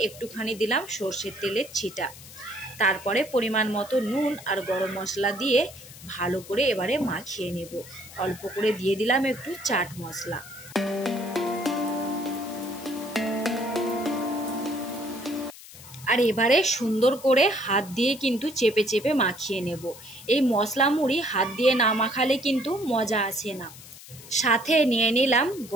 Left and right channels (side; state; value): left; noise; hiss, 17 dB below the sound